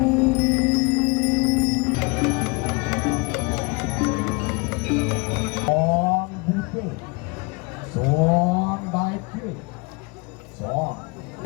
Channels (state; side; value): quieter; right; 29.1 dB